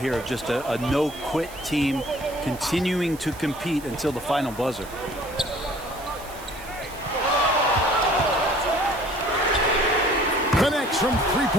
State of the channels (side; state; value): right; noise; hiss, 18 dB below the sound